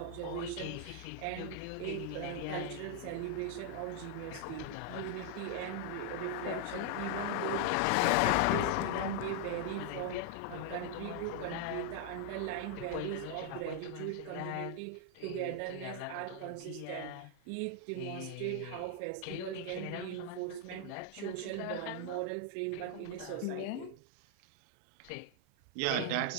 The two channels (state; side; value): different; both; correlation 0.00